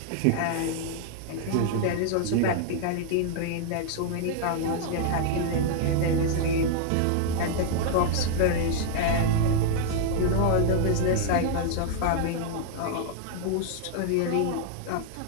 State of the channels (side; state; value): both; different; correlation 0.00